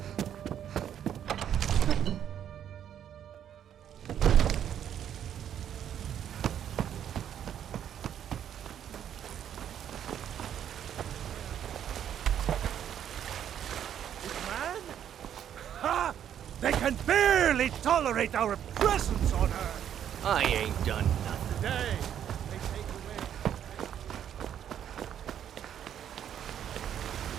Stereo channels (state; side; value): quieter; left; 9.7 dB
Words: They can barely tolerate our presence on Earth. I ain't done nothing. Today, they take away.